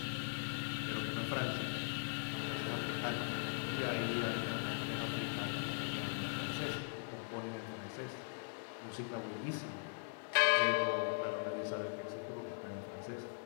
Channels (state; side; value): silent; right; digital silence